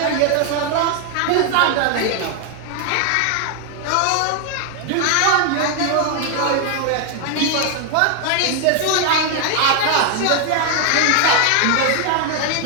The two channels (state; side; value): different; both; correlation 0.00